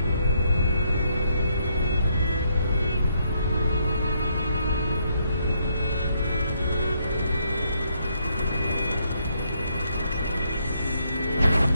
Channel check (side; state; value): both; inverted; correlation -0.74